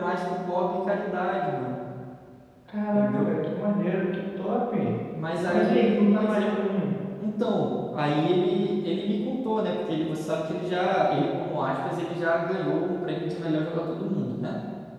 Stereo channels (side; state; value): both; identical; correlation 1.00